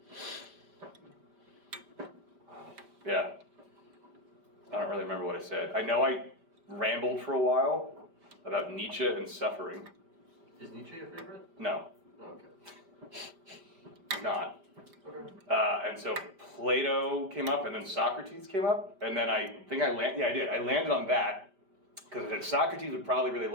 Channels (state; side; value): late; left; 5.1 ms